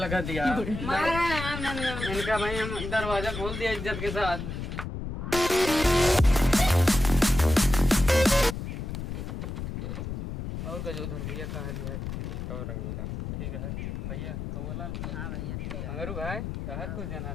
दिया इनका भाई हम दरवाजा खोल दिया इज्जत के साथ। और का जो उधर भैया कहाँ लिया है ठीक और रंगीला ठीक है भैया तो बोला हाँ भैया ठीक है मगर भाई कहा कुछ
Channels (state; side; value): noise; left; rumble, 6 dB below the sound